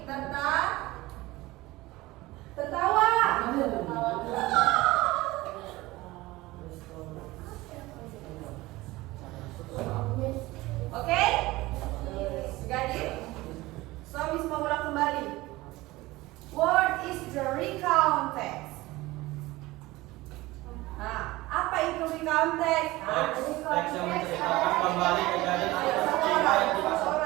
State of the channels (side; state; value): left; quieter; 19.5 dB